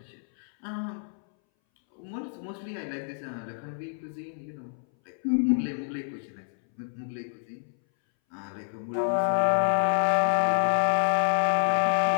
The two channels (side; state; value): right; silent; 59 dB below the other